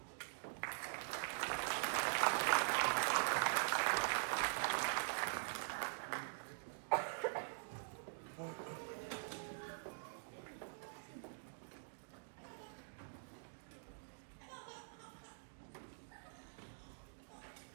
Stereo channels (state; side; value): silent; left; digital silence